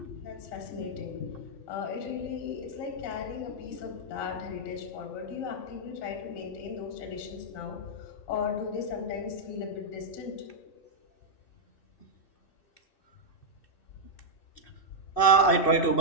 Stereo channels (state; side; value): late; right; 2.6 ms